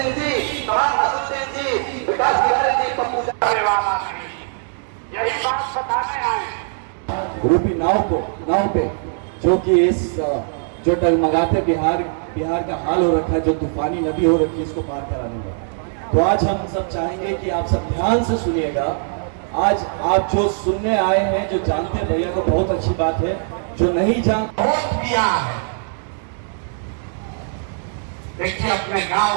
यही बात बताने आए रूपी नाव पे जो कि इस जो टगमगाते बिहार का हाल हो रखा है, जो तूफानी नदी हो रखी है, इसको पार कराने का। तो आज हम सब चाहेंगे कि आप सब ध्यान से सुनिएगा। आज आप जो सुनने आए हैं, जो जानते हैं भैया को बहुत अच्छी बात है, जो नहीं जानते वोट दिया है। देखिए अपने गांव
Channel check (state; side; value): silent; left; digital silence